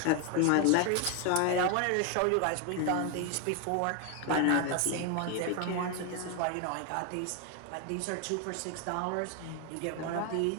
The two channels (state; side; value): different; both; correlation 0.01